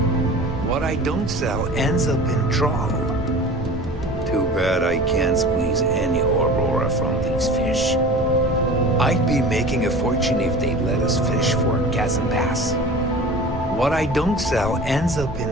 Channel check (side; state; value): both; normal; correlation 0.38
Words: What I don't sell ends up in trawl. Too bad I can't squeeze any Aurora from these fish. I'd be making a fortune if they'd let us fish for Kazandas. What I don't sell ends up